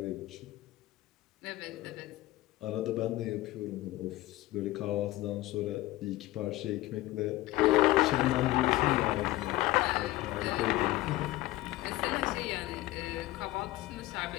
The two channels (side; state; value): right; quieter; 17.7 dB